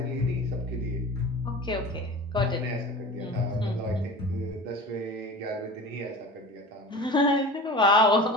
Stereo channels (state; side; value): normal; both; correlation 0.35